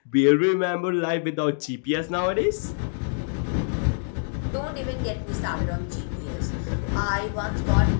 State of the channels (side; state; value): right; silent; digital silence